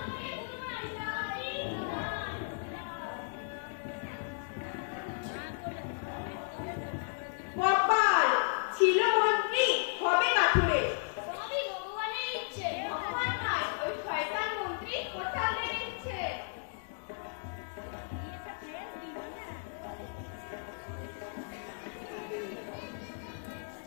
তোমার যাই কপাল ছিল মন্ত্রী, হবে কাঠুরে। সবই ভগবানের ইচ্ছে। ভগবান নয়, ওই শয়তান মন্ত্রী কোটালের ইচ্ছে।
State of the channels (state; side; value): silent; right; digital silence